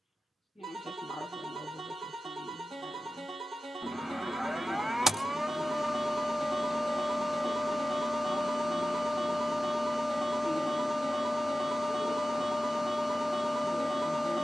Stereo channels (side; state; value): both; normal; correlation 0.94